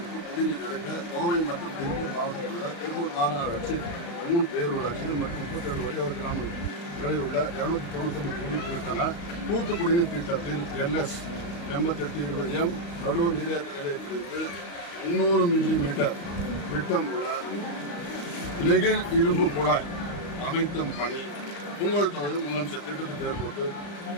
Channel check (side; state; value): right; late; 35 ms